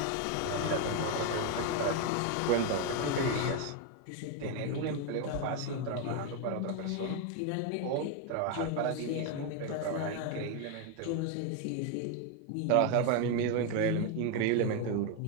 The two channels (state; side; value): different; both; correlation 0.01